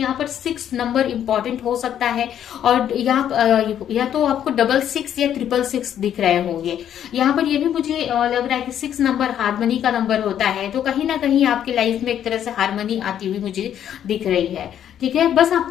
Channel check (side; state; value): right; quieter; 10.0 dB